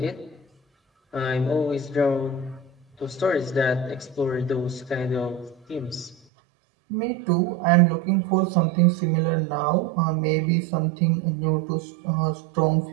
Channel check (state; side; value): drops out; left; at 6.2 s